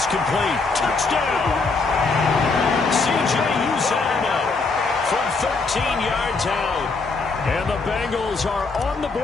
complete. Touchdown! C.J. Uzomah from 13 yards out. And the Bengals are on the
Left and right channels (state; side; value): quieter; right; 4.0 dB